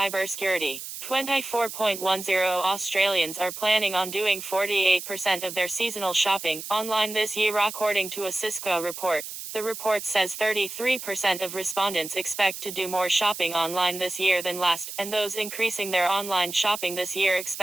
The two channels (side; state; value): right; noise; hiss, 9 dB below the sound